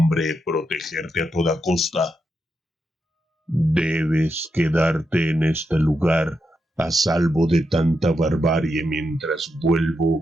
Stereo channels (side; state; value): both; normal; correlation 0.85